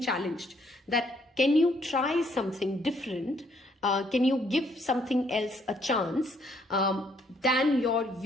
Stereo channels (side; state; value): both; normal; correlation 0.68